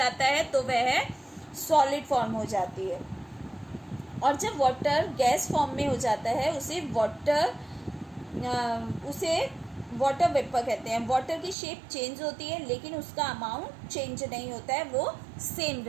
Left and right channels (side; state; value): left; drops out; at 11.6 s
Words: है तो वह सॉलिड फॉर्म हो जाती है और जब वाटर गैस फॉर्म में हो जाता है उसे वाटर वेपर कहते हैं। वाटर की शेप चेंज होती है लेकिन उसका अमाउंट चेंज नहीं होता है, वो सेम